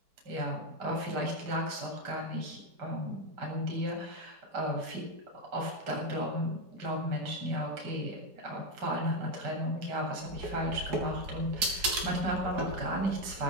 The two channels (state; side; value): late; left; 4.8 ms